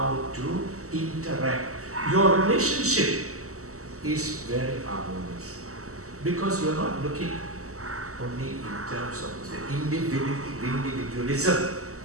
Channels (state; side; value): late; left; 0.65 ms